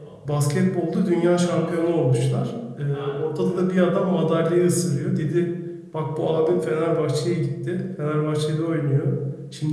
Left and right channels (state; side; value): identical; both; correlation 1.00